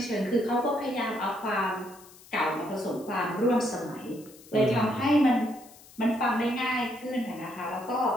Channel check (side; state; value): left; noise; hiss, 22 dB below the sound